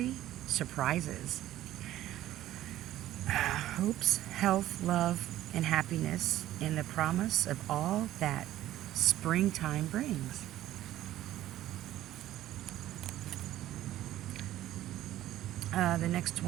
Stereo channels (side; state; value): left; quieter; 13.9 dB